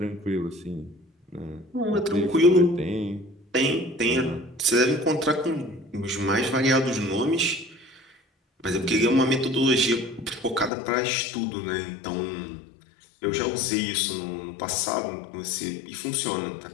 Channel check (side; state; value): right; drops out; at 10.7 s